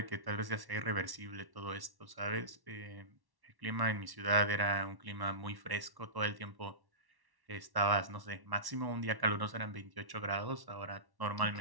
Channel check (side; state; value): left; late; 1.1 ms